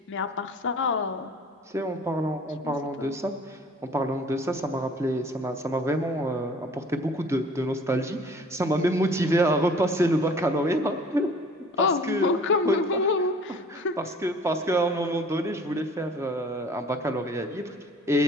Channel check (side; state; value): both; normal; correlation 0.50